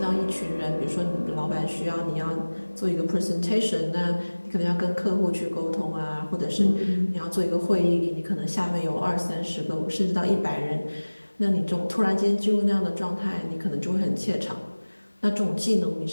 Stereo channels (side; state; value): both; inverted; correlation -1.00